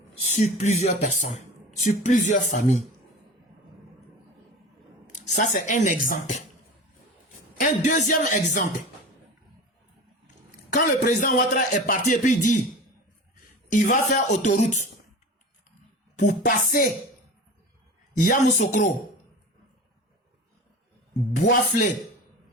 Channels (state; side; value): normal; both; correlation 0.33